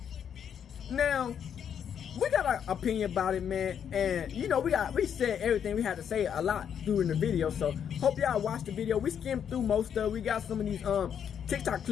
Now, we got our opinion about it, man. And you know, we said everything we had to say a lot during the video. So hope y'all watched the video. We skimmed through most of it. We got some of these TikTok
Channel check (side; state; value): right; quieter; 8.3 dB